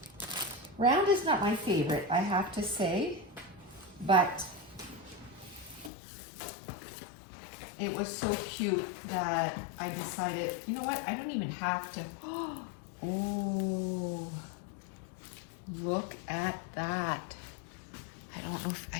Round is not my favorite, I have to say, but it was so cute that I decided, you know what, I don't even have to. Oh, look at that. I don't know if,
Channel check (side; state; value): right; drops out; at 5.9 s